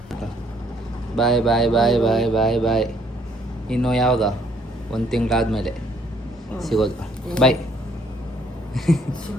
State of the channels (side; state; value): both; normal; correlation 0.65